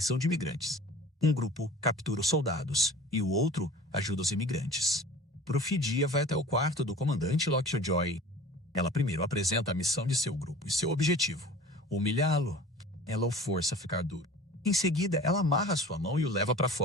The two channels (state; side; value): normal; both; correlation 0.42